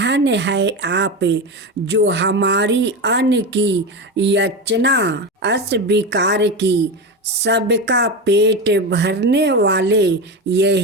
है आप जो हमारी अन्न की याचना अस्वीकार की। सबका पेट भरने वाले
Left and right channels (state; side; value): normal; both; correlation 0.19